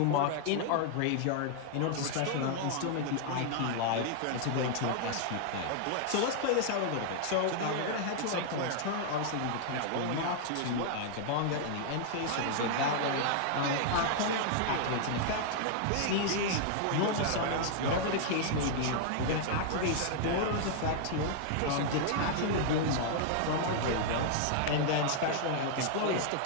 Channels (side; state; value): both; different; correlation -0.01